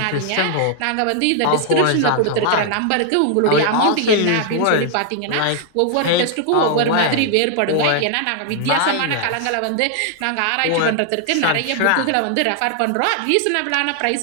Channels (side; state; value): both; different; correlation 0.00